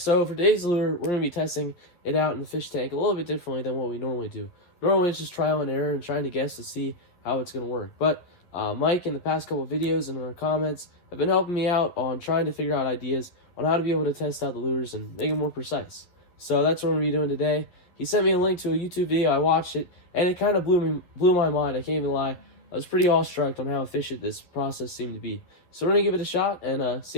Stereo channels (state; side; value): late; right; 11 ms